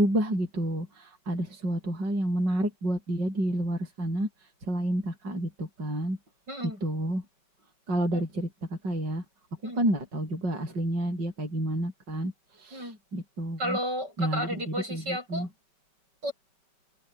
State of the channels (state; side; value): late; left; 5.2 ms